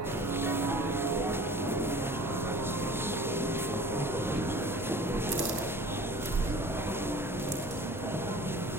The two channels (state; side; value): normal; both; correlation 0.44